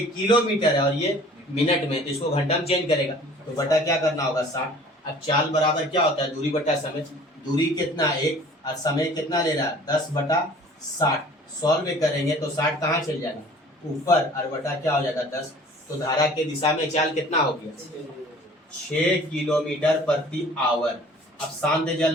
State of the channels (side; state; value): both; normal; correlation 0.49